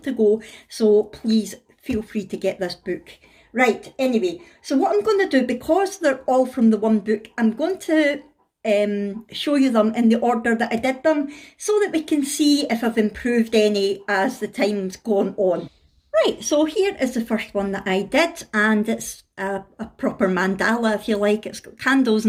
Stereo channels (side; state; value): both; identical; correlation 1.00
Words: to go. So please feel free to get this book. Right, anyway, so what I'm going to do, because they're all from the one book, I'm going to show you them in the order that I did them, so that we can see if I've improved any as the time's gone on. Right, so here is the first one that I did, and it's a proper mandala, if you like. It's got candles